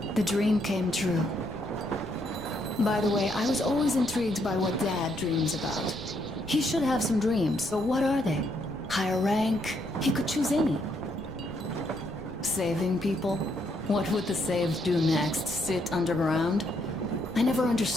The dream came true. By the way, I was always intrigued by what Dad dreams about. He should have some dreams, but what are they? Higher rank? He could choose any. Saving people? What would the saved do next? Sit underground? I never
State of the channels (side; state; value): right; noise; rumble, 16 dB below the sound